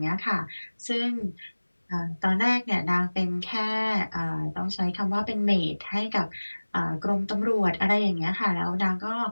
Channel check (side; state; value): both; inverted; correlation -1.00